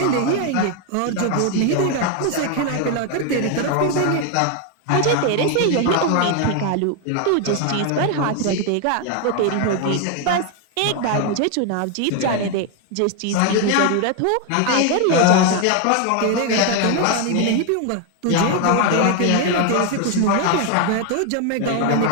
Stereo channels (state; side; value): different; both; correlation 0.01